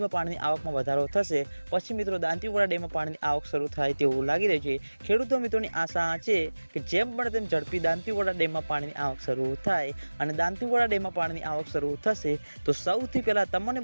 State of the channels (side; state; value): both; inverted; correlation -1.00